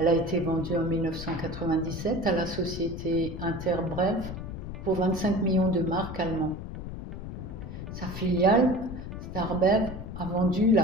a été vendue en 1997 à la société Interbrewf pour 25 millions de marks allemands. Sa filiale, Starbev, a vendu la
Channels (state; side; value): noise; left; rumble, 8 dB below the sound